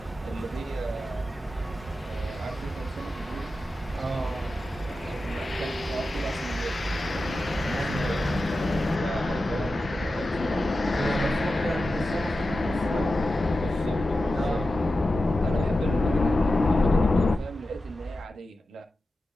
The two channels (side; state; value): both; normal; correlation 0.92